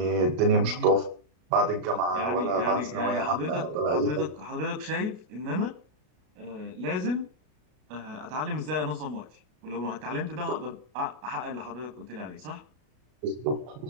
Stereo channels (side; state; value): left; late; 33 ms